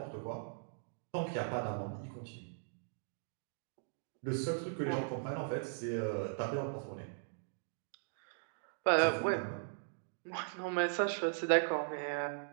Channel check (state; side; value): silent; left; digital silence